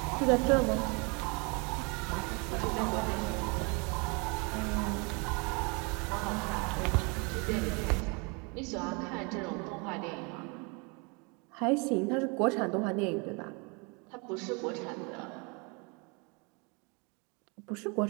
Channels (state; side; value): quieter; left; 31.3 dB